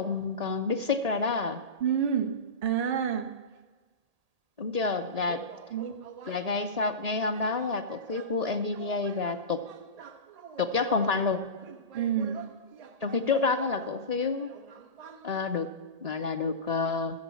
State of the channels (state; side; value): late; left; 1.8 ms